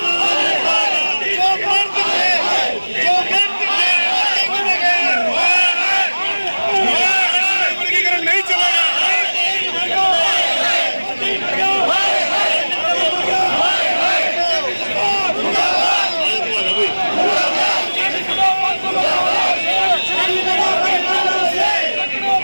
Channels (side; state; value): both; inverted; correlation -1.00